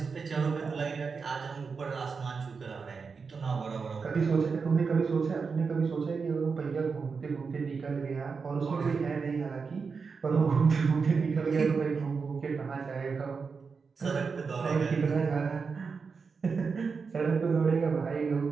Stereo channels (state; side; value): quieter; left; 5.2 dB